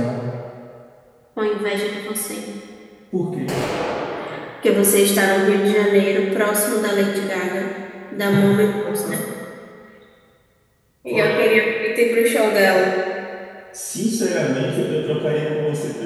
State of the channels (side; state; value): both; identical; correlation 1.00